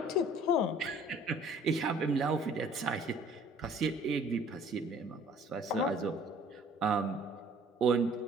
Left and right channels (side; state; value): both; normal; correlation 0.54